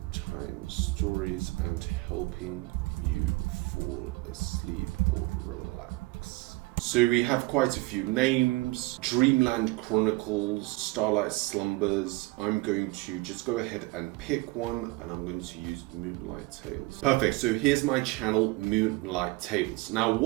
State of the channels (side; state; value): left; quieter; 21.9 dB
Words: stories and helping you fall asleep or relax. So we have quite a few names: Dreamland Chronicles, Starlight Slumbers. I'm going to just go ahead and pick one, and I'm going to use Moonlight Tales. Perfect, so here's my channel, Moonlight Tales. Now